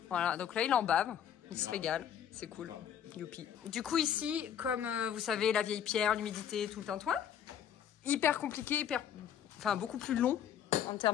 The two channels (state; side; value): quieter; right; 9.4 dB